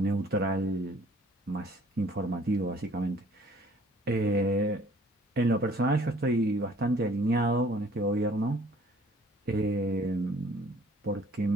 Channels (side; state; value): both; normal; correlation 0.56